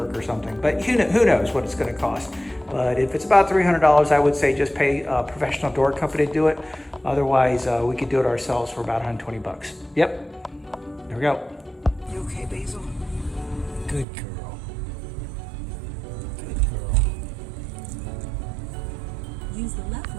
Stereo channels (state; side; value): drops out; left; at 14.1 s